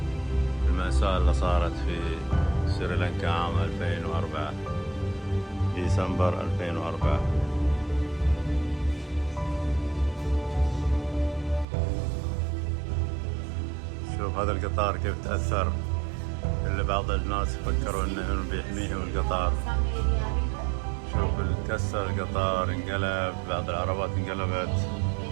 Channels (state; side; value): drops out; left; at 11.7 s